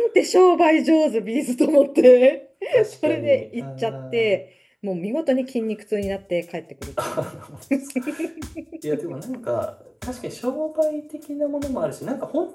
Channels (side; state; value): both; identical; correlation 1.00